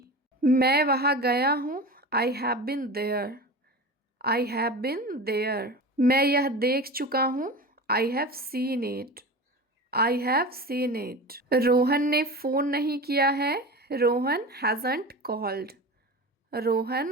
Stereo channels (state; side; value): normal; both; correlation 0.31